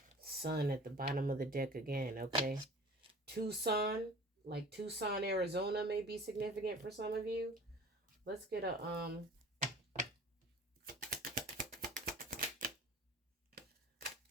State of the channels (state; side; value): normal; both; correlation 0.44